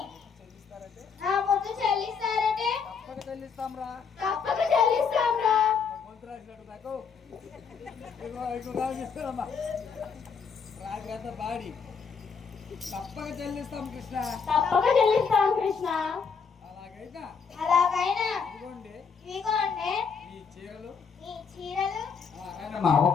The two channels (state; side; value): quieter; right; 5.9 dB